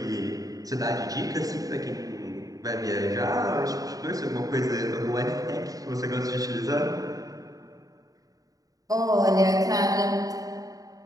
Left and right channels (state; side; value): late; left; 0.17 ms